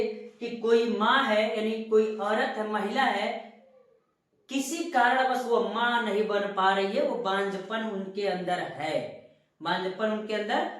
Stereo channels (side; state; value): both; identical; correlation 1.00